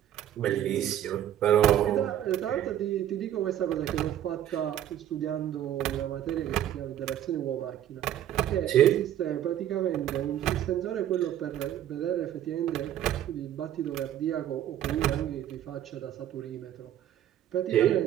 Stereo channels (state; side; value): quieter; left; 11.4 dB